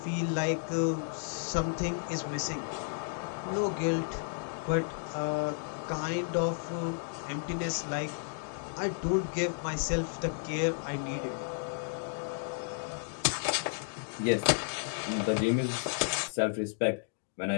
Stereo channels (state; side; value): silent; right; digital silence